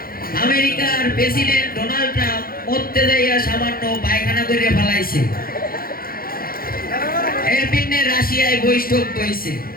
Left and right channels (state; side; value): late; right; 0.43 ms